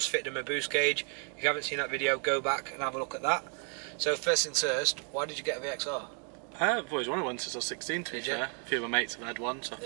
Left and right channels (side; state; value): left; quieter; 39.7 dB